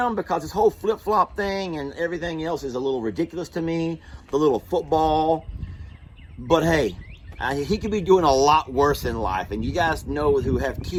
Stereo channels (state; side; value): identical; both; correlation 1.00